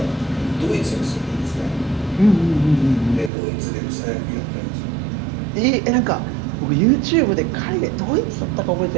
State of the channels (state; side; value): drops out; left; at 3.3 s